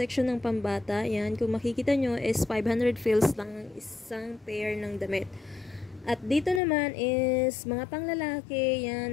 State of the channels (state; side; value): drops out; right; at 6.6 s